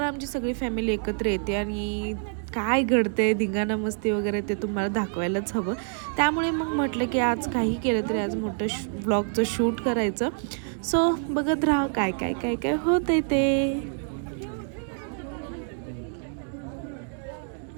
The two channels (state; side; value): silent; left; 60 dB below the other